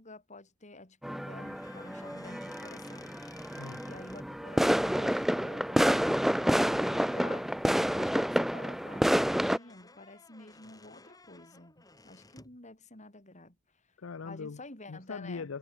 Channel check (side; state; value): both; normal; correlation 0.97